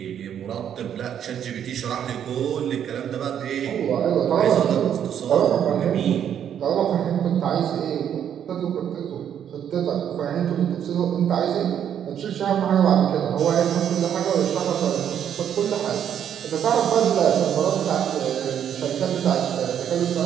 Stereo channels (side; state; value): left; quieter; 9.2 dB